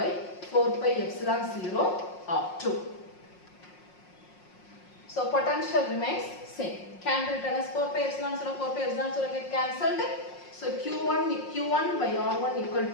4 pi epsilon 0 R2. So potential remains same. Can be written as 4 pi epsilon 0, 4 pi epsilon 0 get cancelled. So Q1 by R1 equal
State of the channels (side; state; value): right; late; 5.5 ms